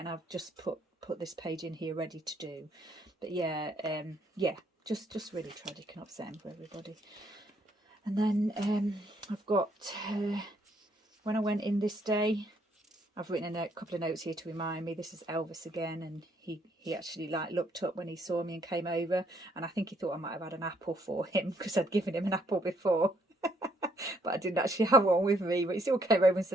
I've just put this page in here ready to do. But yeah, yeah, just really tragic and upsetting for everybody. And then I've got when I went in this day, I've written a couple of notes here to remind me. This is Elvis again, and he actually like looked up when he saw me and came over, and I think he thought I might have had an apple for him because I'd given him an apple before. But I didn't actually have one with me, but he still came over and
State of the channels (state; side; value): normal; both; correlation 0.69